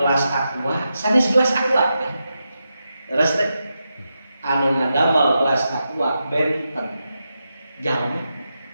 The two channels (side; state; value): both; inverted; correlation -0.88